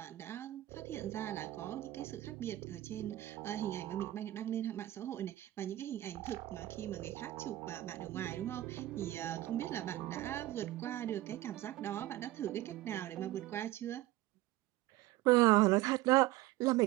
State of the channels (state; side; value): quieter; left; 16.2 dB